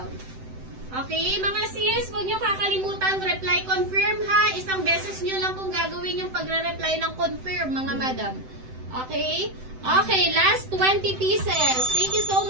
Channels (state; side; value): late; left; 7.8 ms